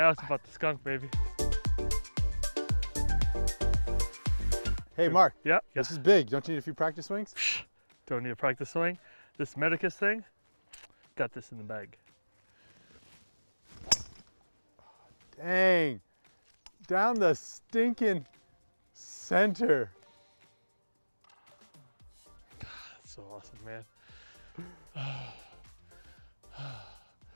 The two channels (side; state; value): both; inverted; correlation -1.00